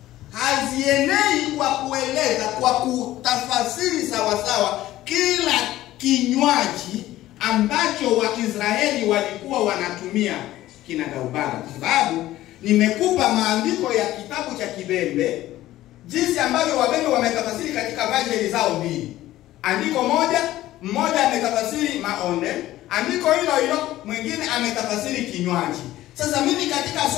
hazienei kwa kueleza, kwa kutafasiri sawasawa kila kinywaji ambacho Waisraeli walikuwa wanatumia kinagaubaga. Kwa sababu nimekupa maandiko ya kitabu cha Kibembe, jinsi ambavyo Wabembe wametafasiri katika version zao mbili. Andiko mmoja ametafasiri maonde, andiko hilo hilo mwingine ametafasiri kinywaji. Sasa mimi katika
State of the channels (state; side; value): quieter; right; 15.1 dB